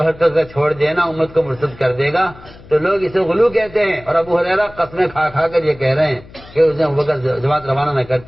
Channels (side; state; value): left; noise; hum, 21 dB below the sound